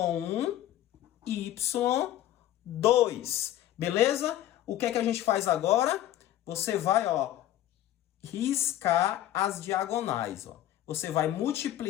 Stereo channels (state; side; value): quieter; right; 12.9 dB